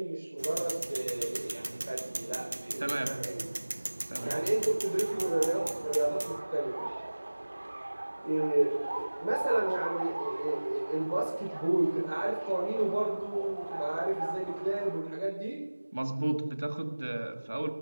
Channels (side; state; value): both; inverted; correlation -1.00